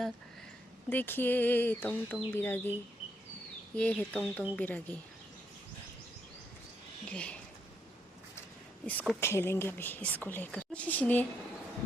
देखिए तोंग तोंग बिरागी, ये है तोंग तोंग बिरागी. ये इसको खेलेंगे अभी, इसको लेकर.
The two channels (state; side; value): normal; both; correlation 0.76